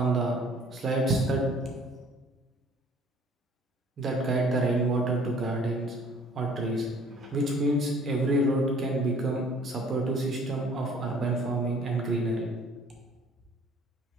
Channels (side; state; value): both; normal; correlation 0.54